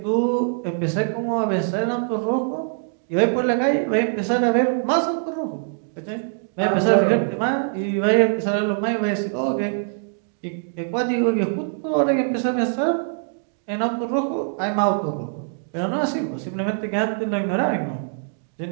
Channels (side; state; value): left; silent; digital silence